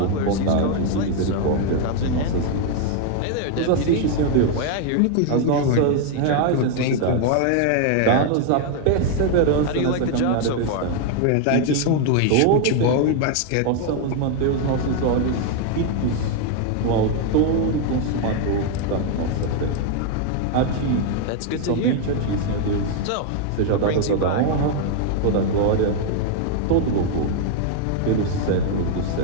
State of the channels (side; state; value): both; different; correlation 0.00